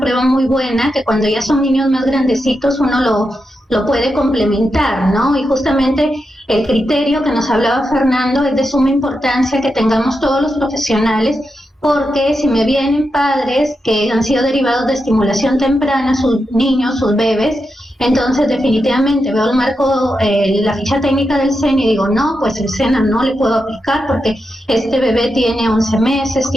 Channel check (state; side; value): normal; both; correlation 0.87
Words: muy buena, que cuando ya son niños más grandecitos uno lo puede complementar, ¿no? Y justamente el criterio que nos hablaba Fernando es de suma importancia que tengamos todos los profesionales, porque si me vienen padres que han sido derivados de estimulación temprana, sus niños, sus bebés, entonces definitivamente veo el marco, la ficha técnica del SENA y digo, no, pues el SENA no le puedo aplicar porque este bebé tiene 11 meses,